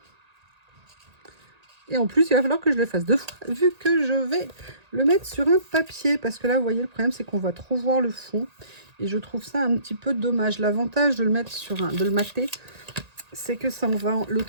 Et en plus, il va falloir que je le fasse 2 fois, vu que je vais le mettre sur un papier. Parce que là, vous voyez, le problème, c'est qu'on va trop voir le fond. Et je trouve ça un petit peu dommage. L'avantage de le mettre sur de le mater, c'est que ça, on va le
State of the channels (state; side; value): late; left; 1.8 ms